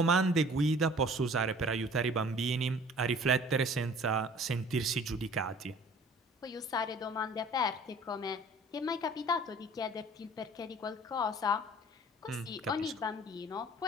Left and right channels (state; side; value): normal; both; correlation 0.49